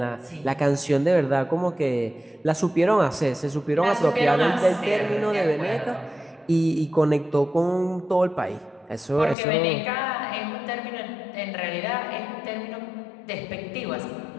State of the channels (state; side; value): drops out; right; at 9.3 s